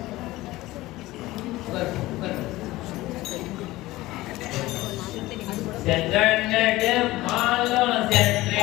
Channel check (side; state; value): right; quieter; 18.2 dB